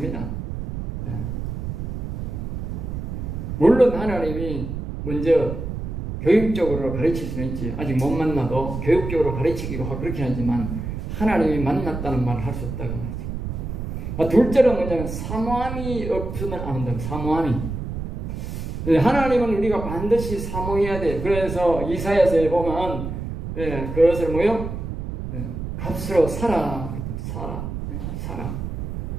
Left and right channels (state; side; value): noise; right; rumble, 5 dB below the sound